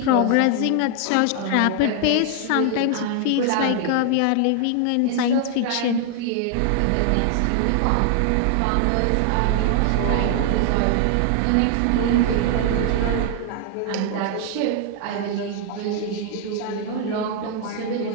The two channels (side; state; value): both; different; correlation 0.00